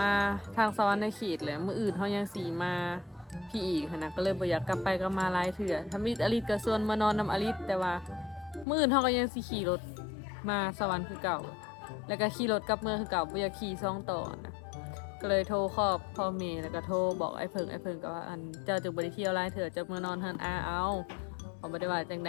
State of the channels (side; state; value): right; drops out; at 8.7 s